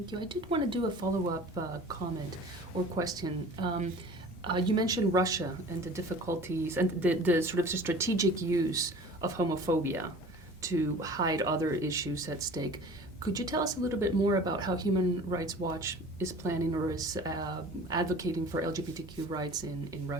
you. I did want to do a follow-up comment or question. You mentioned Russia and the difficulties and the sort of strategic use of homophobia to hide other issues at stake. Could you tell us a little bit more about how Human Rights Watch is planning or is advocating for LGBTQ rights in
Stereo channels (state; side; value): normal; both; correlation 0.43